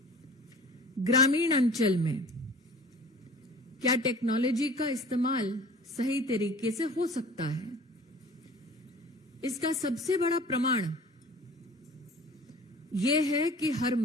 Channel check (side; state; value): both; normal; correlation 0.44